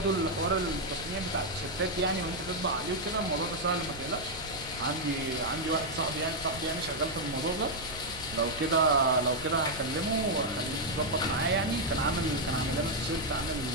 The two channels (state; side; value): noise; right; rumble, 16 dB below the sound